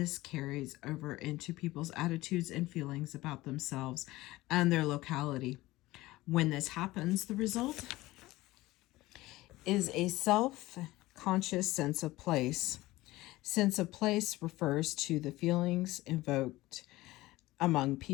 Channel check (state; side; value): quieter; right; 18.4 dB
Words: carries over into people's attitudes and feelings about themselves and their locality. When this happens, the result is a self-conscious sense of place. Sense of place refers to the feelings invoked among